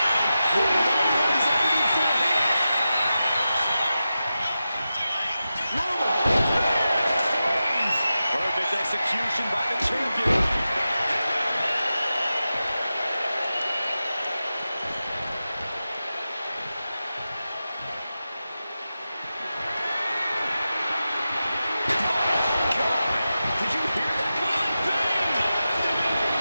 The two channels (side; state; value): both; inverted; correlation -0.92